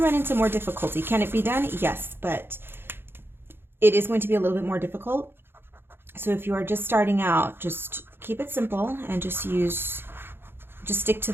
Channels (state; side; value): late; left; 0.11 ms